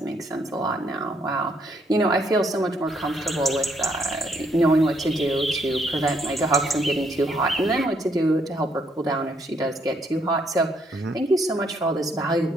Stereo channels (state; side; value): normal; both; correlation 0.71